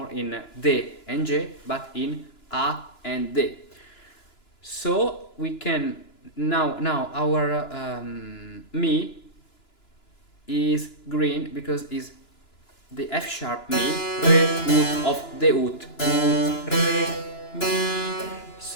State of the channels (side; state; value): right; late; 2.9 ms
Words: in D and G, but in A and D. So we can now our Mi is green because is the F sharp Mi, Re, Ut of the Ut. Ut, Re, Mi.